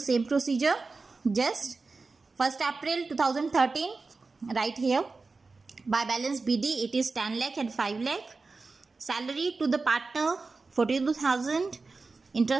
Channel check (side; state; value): left; quieter; 4.0 dB